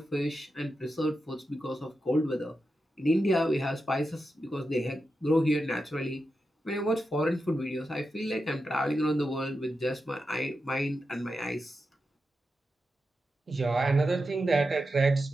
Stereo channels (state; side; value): normal; both; correlation 0.89